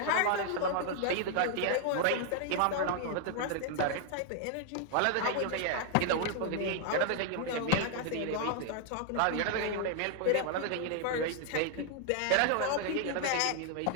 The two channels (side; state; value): both; different; correlation 0.00